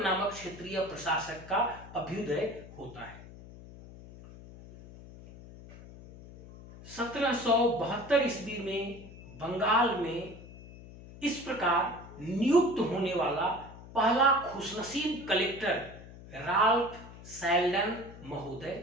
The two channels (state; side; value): noise; left; hum, 17 dB below the sound